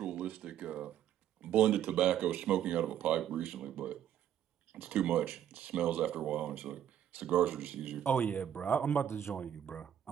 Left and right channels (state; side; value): quieter; left; 10.3 dB